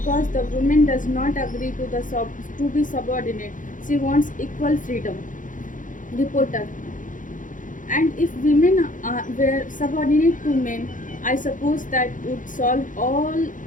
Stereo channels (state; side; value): late; right; 0.38 ms